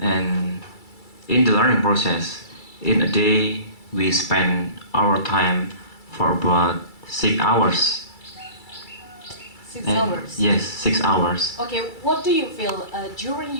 in the learning process, in a day we spend our time for about 6 hours. 6 hours? Yes, 6 hours. Okay, what do you feel during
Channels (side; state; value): right; late; 2.3 ms